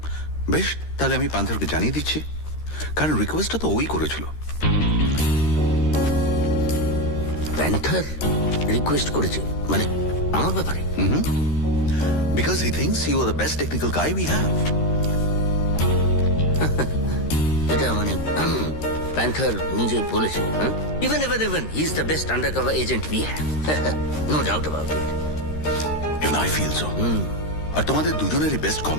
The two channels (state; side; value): late; right; 13 ms